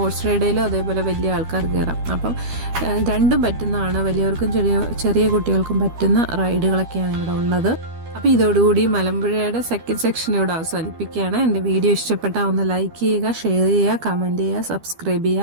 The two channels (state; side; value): late; left; 12 ms